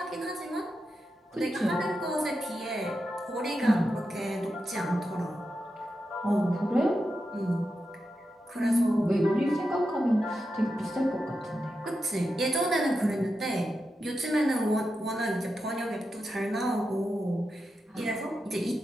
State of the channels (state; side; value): normal; both; correlation 0.88